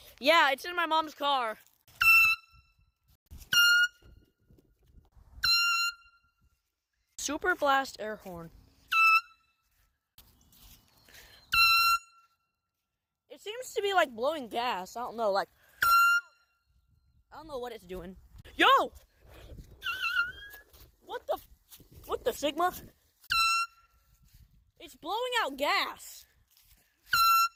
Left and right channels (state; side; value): identical; both; correlation 1.00